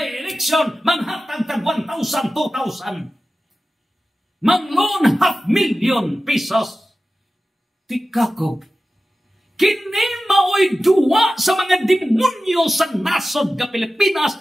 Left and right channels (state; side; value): normal; both; correlation 0.94